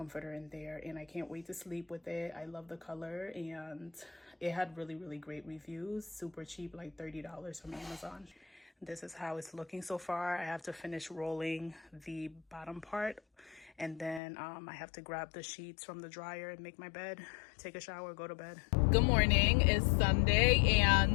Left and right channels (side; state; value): right; drops out; at 14.2 s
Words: in there, and I can't wait to sleep with it. I love the color, and it had really, really great reviews. Super cheap, like $30 from Amazon. This is how it's looking so far. I have to finish rolling the bottom part, and then I have to grab the sheets from the dryer and make my bed, take a shower, go to bed. Good morning. It's Sunday,